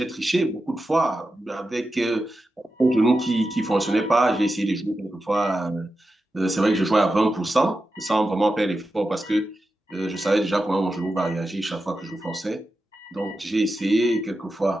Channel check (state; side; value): normal; both; correlation 0.91